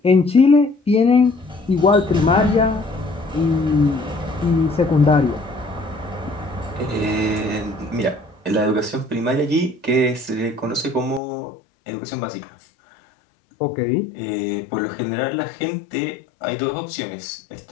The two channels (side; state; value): right; drops out; at 11.2 s